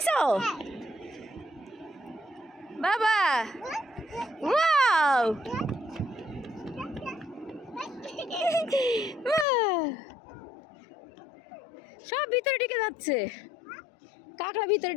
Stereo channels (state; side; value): drops out; right; at 9.5 s